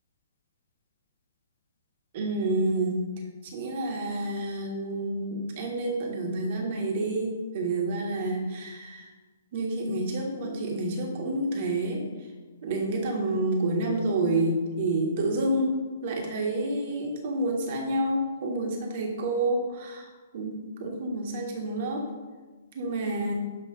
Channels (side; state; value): both; inverted; correlation -0.53